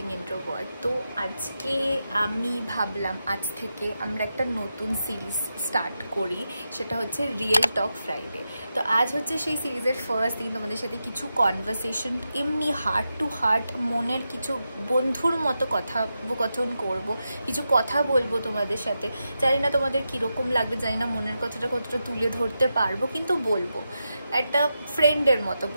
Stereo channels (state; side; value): inverted; both; correlation -0.88